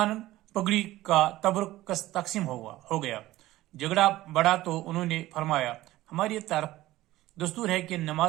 پگڑی کا تبرک تقسیم ہو گیا۔ جھگڑا بڑھا تو انہوں نے فرمایا، ہماری طرف دستور ہے کہ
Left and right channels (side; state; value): left; quieter; 16.4 dB